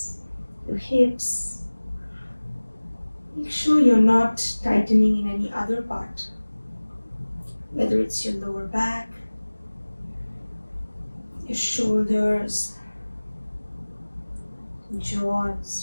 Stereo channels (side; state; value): both; inverted; correlation -1.00